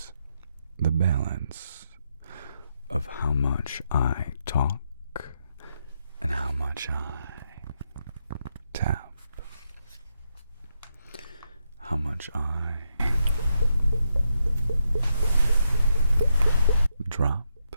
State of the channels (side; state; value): both; inverted; correlation -0.81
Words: the balance of how much I talk and how much I tap, how much I drop,